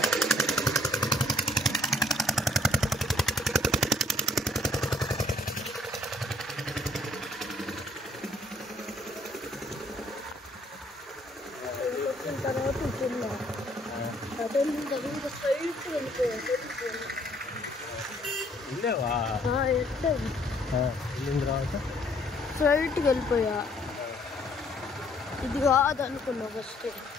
స్ట్రైట్కి వెళ్ళిపోయా. ఇది కాదు అనుకున్నా ఫస్ట్.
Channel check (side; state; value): both; normal; correlation 0.63